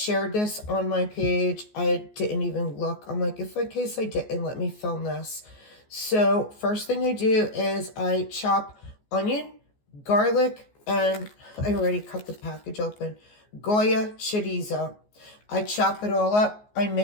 this on my page. I didn't even look. I'm like, if in case I didn't, let me film this. So first thing I do is I chop onion, garlic, and I already cut the package open. Goya chorizo. I chop it all up. I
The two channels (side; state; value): right; late; 14 ms